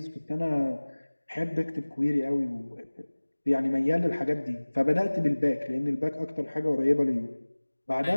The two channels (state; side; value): inverted; both; correlation -1.00